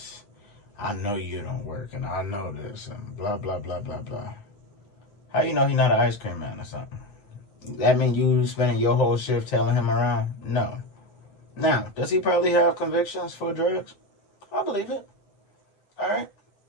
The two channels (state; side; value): late; right; 9.7 ms